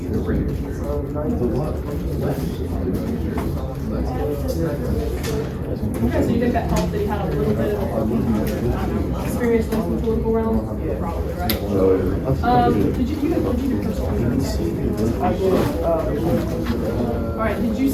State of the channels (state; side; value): identical; both; correlation 1.00